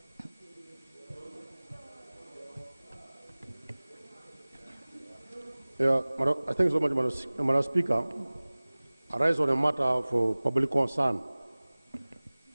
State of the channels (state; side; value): inverted; both; correlation -1.00